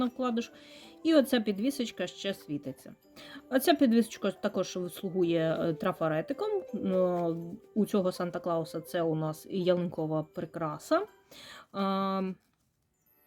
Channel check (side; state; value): both; identical; correlation 1.00